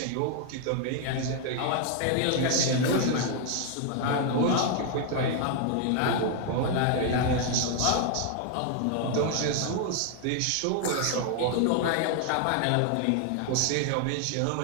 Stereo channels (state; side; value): different; both; correlation 0.00